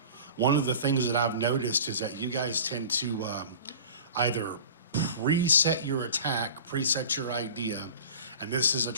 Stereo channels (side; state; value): both; inverted; correlation -0.39